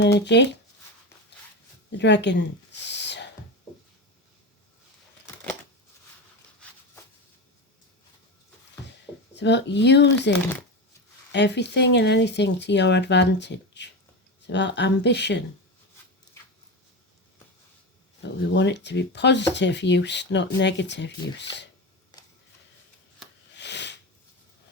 energy, the Dragons. It's about using everything and anything to your advantage. It's about ambition. But we want it to be positive use, not negative use.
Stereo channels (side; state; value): both; normal; correlation 0.20